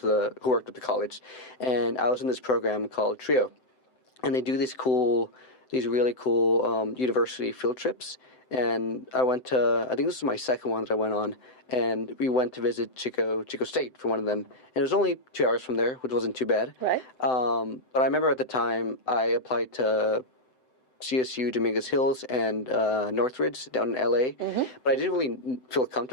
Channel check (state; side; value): late; right; 7.8 ms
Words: at the college. And I was in this program called TRIO. And they do these really cool university field trips. And I went to, I think this was my second one that I went on, and we went to visit Chico State for one of them. And it was only 2 hours from there, which wasn't too bad. Right. But I remember at the time I applied to CSU Dominguez Hills and Northridge down in LA, but I didn't really feel